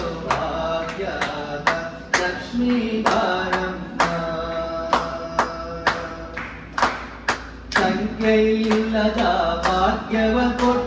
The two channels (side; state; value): both; identical; correlation 1.00